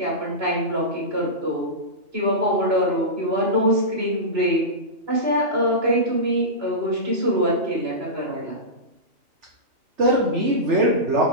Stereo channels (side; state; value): left; late; 2.8 ms